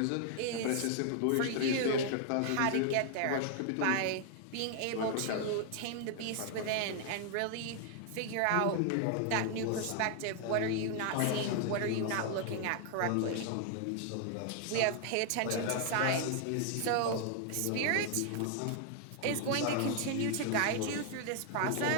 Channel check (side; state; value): both; different; correlation 0.00